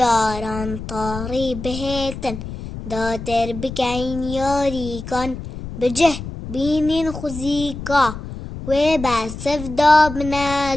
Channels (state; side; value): noise; left; rumble, 9 dB below the sound